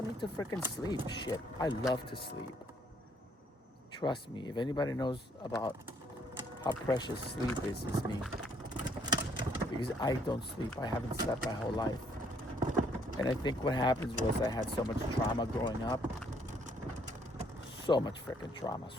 need to freaking sleep. Shit, I love to sleep. Trust me. If anybody knows about how precious sleep is, it's me. Because I don't sleep. I haven't slept my whole life. And I think what happens was I had so much trauma growing up. So much freaking trauma.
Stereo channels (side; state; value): both; normal; correlation 0.67